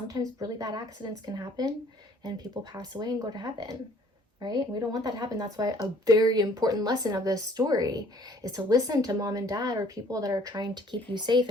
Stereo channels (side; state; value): both; normal; correlation 0.58